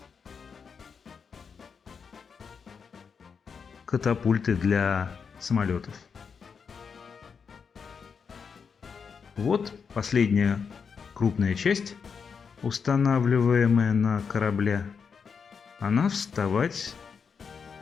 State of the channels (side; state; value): right; quieter; 6.1 dB